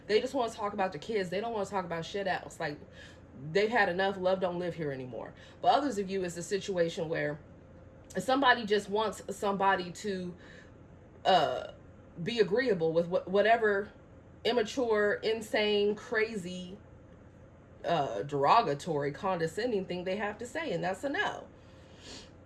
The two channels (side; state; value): both; identical; correlation 1.00